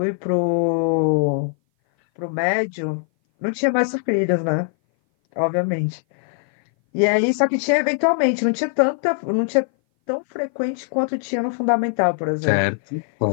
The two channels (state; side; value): silent; right; 59 dB below the other